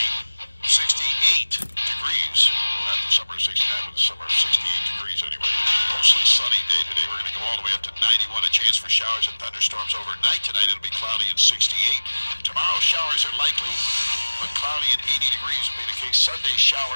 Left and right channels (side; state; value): both; inverted; correlation -1.00